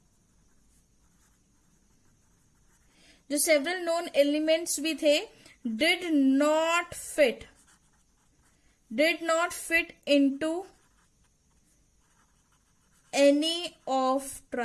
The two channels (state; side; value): identical; both; correlation 1.00